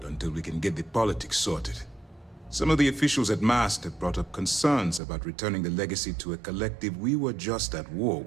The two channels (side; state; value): left; drops out; at 5.0 s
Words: until we can get the politics sorted. Some of the officials at Mast have brought up concerns about returning the legacy to a collective we were just at war